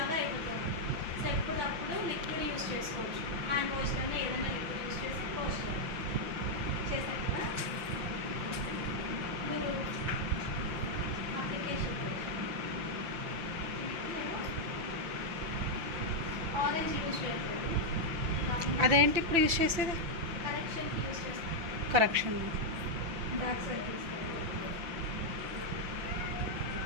అయిపోతుంది. సో ఎప్పుడప్పుడు లిక్విడ్ యూజ్ చేసుకోవచ్చు, హ్యాండ్ వాష్ కన్నా ఏదైనా లిక్విడ్ యూజ్ చేసి వాష్ చేశారు కదా. మీరు అప్లికేషన్ ఆరెంజ్ యూజ్ చేయట్లేదు, అదేంటి ఇప్పుడు యూజ్ చేసేది? కరెక్షన్కి యూజ్ చేస్తాం. కరెక్షన్ డార్క్ సర్కిల్స్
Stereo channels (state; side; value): late; left; 6.0 ms